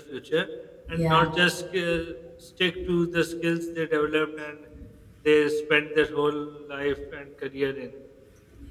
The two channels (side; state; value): both; identical; correlation 1.00